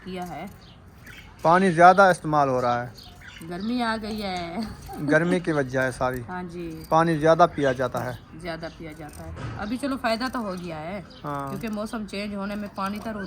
है। पानी ज़्यादा इस्तेमाल हो रहा है, गर्मी आ गई है। गर्मी की वजह है सारी। हाँ जी, पानी ज़्यादा पिया जाता है। ज़्यादा पिया जाता है। अभी चलो फ़ायदा तो हो गया है। हाँ, क्योंकि मौसम चेंज होने में पानी तो रो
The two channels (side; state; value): both; identical; correlation 1.00